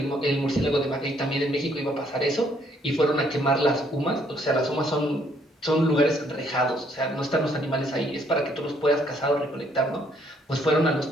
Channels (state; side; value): normal; both; correlation 0.67